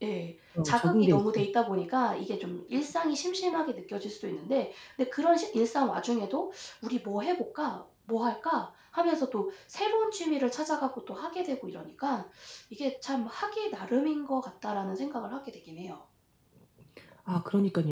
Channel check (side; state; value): both; identical; correlation 1.00